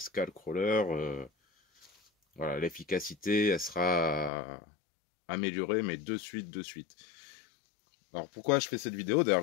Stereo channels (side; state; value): right; drops out; at 4.3 s